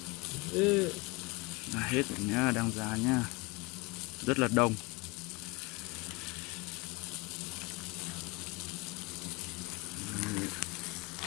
Ra hết rồi nhá, đang ra nhá. Rất là đông.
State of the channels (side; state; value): right; quieter; 25.7 dB